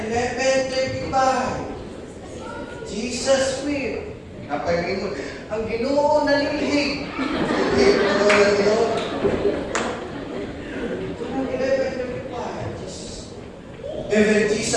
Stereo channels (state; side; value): identical; both; correlation 1.00